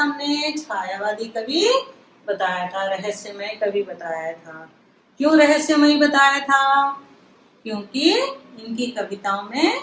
हमने? छायावादी कवि बताया था, रहस्यमय कवि बताया था। क्यों रहस्यमय बताया था? क्योंकि इनकी कविताओं में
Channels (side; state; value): both; identical; correlation 1.00